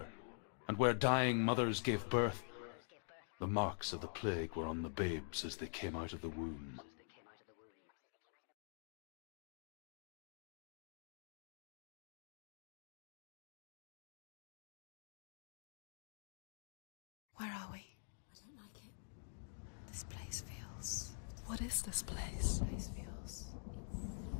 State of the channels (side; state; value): right; silent; digital silence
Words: and where dying mothers gave birth, the marks of the plague were on the babes as they came out of the womb. Where are we? I don't like it. This place feels... What is this place? This place feels... It's...